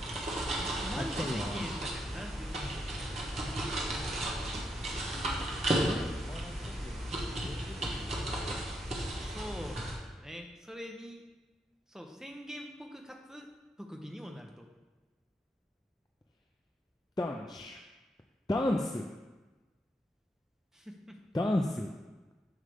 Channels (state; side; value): normal; both; correlation 0.80